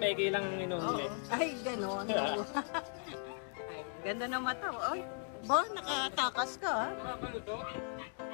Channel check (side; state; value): right; silent; 53 dB below the other